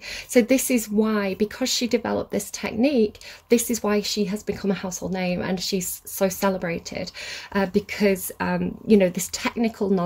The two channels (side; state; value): both; identical; correlation 1.00